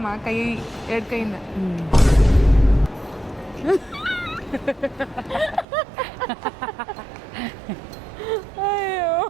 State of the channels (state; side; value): drops out; left; at 5.7 s